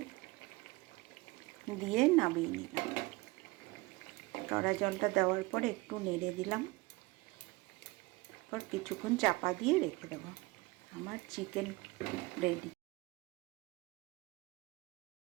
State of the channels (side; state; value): left; quieter; 22.7 dB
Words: দিয়ে নামিয়ে নিলাম। কেওড়া জলটা দেওয়ার পর একটু নেড়ে দিলাম, তারপর কিছুক্ষণ চাপা দিয়ে রেখে দেবো। আমার চিকেন রেডি।